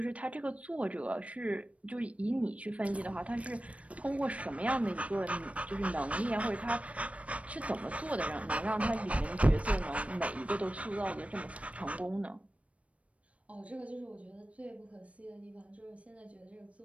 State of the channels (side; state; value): left; late; 0.064 ms